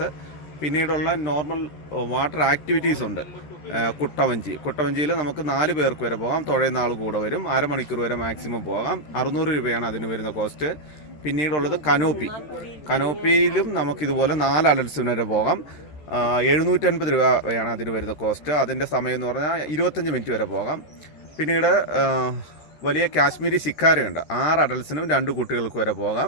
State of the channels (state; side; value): late; right; 13 ms